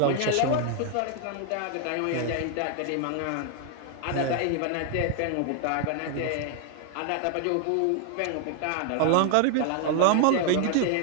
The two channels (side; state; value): both; different; correlation 0.00